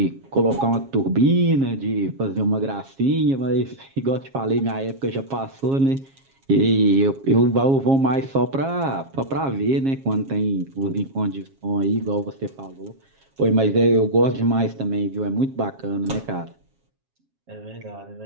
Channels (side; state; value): left; late; 7.4 ms